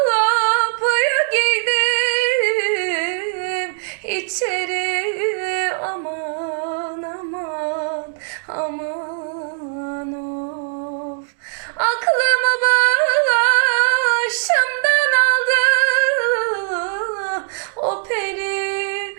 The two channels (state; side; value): silent; left; digital silence